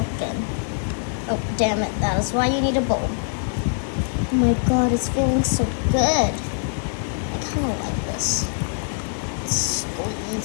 in. Oh, damn it. That is why you need a bowl. Oh my god, it's feeling so good. I kind of like this.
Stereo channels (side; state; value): right; silent; digital silence